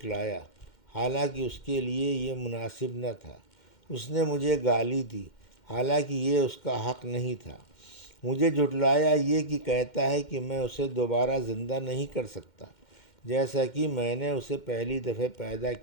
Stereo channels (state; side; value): late; right; 2.1 ms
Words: حالانکہ اس کے لیے یہ مناسب نہ تھا۔ اس نے مجھے گالی دی، حالانکہ یہ اس کا حق نہیں تھا۔ مجھے جھٹلایا یہ کہ کہتا ہے کہ میں اسے دوبارہ زندہ نہیں کر سکتا، جیسا کہ میں نے اسے پہلی دفعہ پیدا